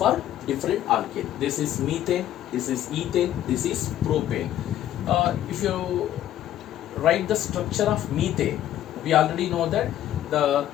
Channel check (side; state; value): right; quieter; 12.1 dB